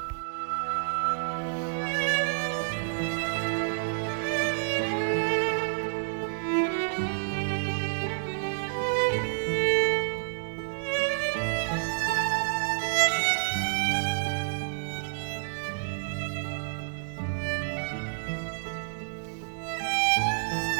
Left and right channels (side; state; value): left; silent; digital silence